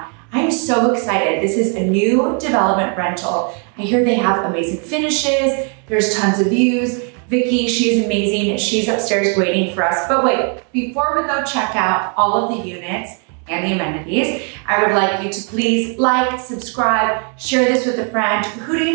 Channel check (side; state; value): left; quieter; 39.9 dB